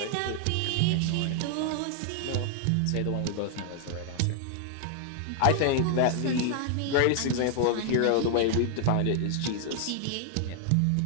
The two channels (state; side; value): different; both; correlation 0.00